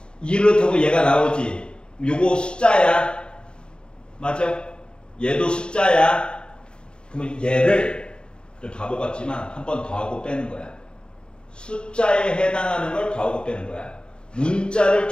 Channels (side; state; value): right; late; 0.051 ms